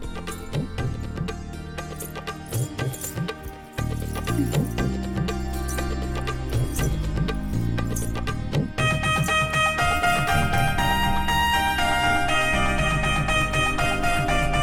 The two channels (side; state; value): both; identical; correlation 1.00